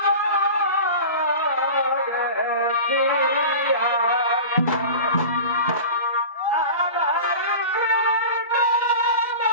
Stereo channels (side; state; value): both; inverted; correlation -0.34